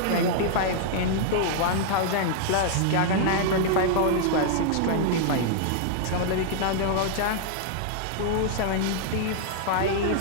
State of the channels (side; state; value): both; different; correlation -0.01